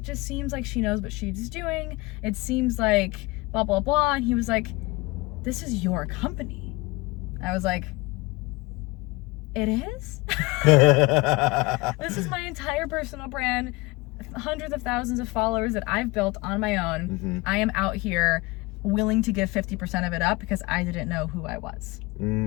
just seems like she knows what she's doing. It seems like blah, blah, blah." And he was like, "This is your company." I was like, "It is?" This is my entire personal brand, hundreds of thousands of followers that I've built on my own. I am out here willing to give 50% of it up because I didn't know who I was.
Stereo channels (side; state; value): right; quieter; 23.4 dB